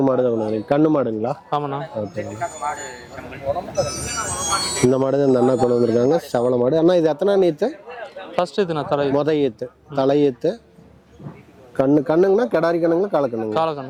மாடு தான் கொண்டு வந்திருக்கீங்க. கண்ணு மாடுங்களா? ஆமாண்ணா. ஓகேங்க. இந்த மாடு தான் இந்த அண்ணா கொண்டு வந்திருக்காங்க. செவல மாடு. அண்ணா இது எத்தனை நீத்து? ஃபர்ஸ்ட் இதுண்ணா. ஈத்து. தலையீத்து. கண்ணுங்கண்ணா? கிடாரி கண்ணுங்களா? காலக்கண்ணுங்க?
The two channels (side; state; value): both; identical; correlation 1.00